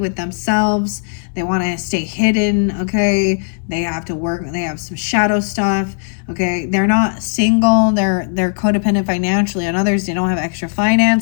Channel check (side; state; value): right; silent; 66 dB below the other